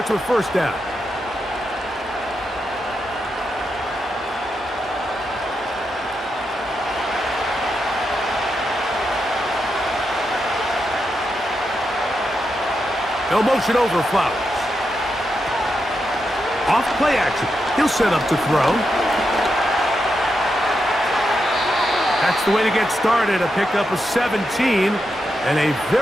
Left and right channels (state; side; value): normal; both; correlation 0.85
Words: with first down. No motion over Flowers. Off play action. He'll set up to throw. That's the way to get started. A pickup of 17 and a